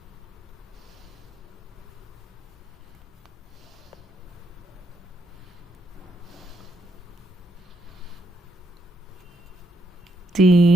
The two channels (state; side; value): normal; both; correlation 0.77